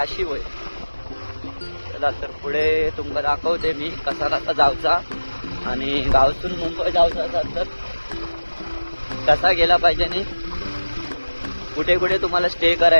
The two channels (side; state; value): both; inverted; correlation -1.00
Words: होईल. चला तर पुढे तुमका दाखवते मी कसा कसा जायचा आणि गावातून मुंबई जायचं असेल तर कसा गेला पाहिजे आणि कुठे कुठे तुम्हाला स्टे